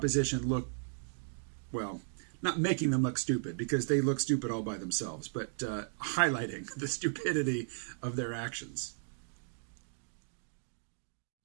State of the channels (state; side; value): silent; left; digital silence